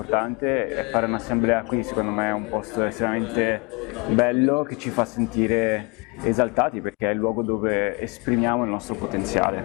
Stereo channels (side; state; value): right; quieter; 29.4 dB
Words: e fare un'assemblea qui secondo me è un posto estremamente bello che ci fa sentire esaltati perché è il luogo dove esprimiamo il nostro potenziale.